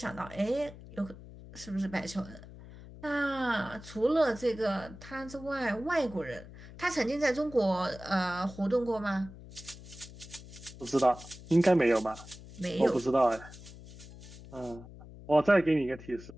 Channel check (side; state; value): left; noise; hum, 16 dB below the sound